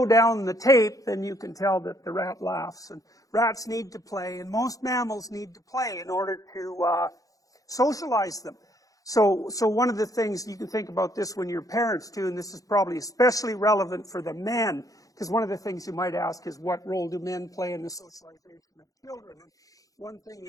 down the tape, then you can tell that the rat laughs. And rats need to play, and most mammals need to play in order to socialize them. So one of the things, you can think about this when you're parents too, and this is probably especially relevant for the men, because one of the things you might ask is, what role do men play in the socialization of children? And one thing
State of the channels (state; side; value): late; right; 0.17 ms